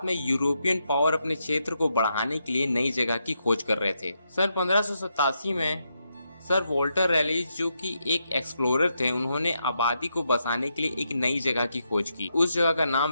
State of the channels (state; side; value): inverted; both; correlation -0.82